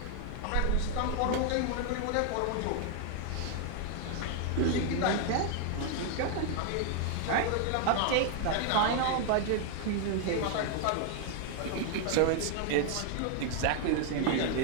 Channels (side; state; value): both; different; correlation 0.00